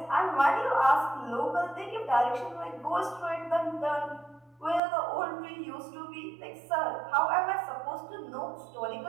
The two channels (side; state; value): left; drops out; at 4.8 s